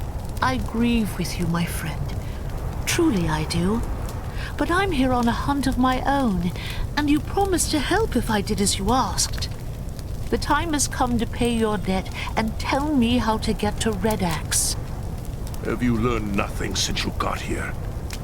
I grieve with you, my friend. Truly I do. But I'm here on a hunt of my own, and you promised to help if I did as you asked. The time has come to pay your debt and tell me how to get to Red Axe. Have you learned nothing since you got here?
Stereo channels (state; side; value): identical; both; correlation 1.00